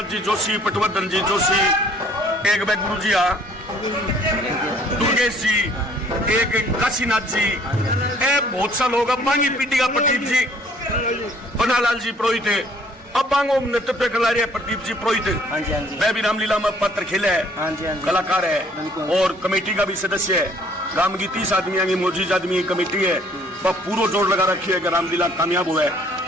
जी जोशी, पटवर्धन जी जोशी, एक गुरु जी दुर्गेश जी, एक काशीनाथ जी, बहुत सा लोग बांगी पीढ़ी का प्रदीप जी, पन्नालाल जी पुरोहित है, अब बांगो नेतृत्व कर रहे प्रदीप जी पुरोहित, वह भी रामलीला में पात्र खेले है, कलाकार है और कमेटी का भी सदस्य है। राम की 30 आदमी की मौजूद आदमी की कमेटी है, वह पूरा जोर लगा रखी है कि रामलीला कामयाब हुआ है।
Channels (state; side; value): normal; both; correlation 0.59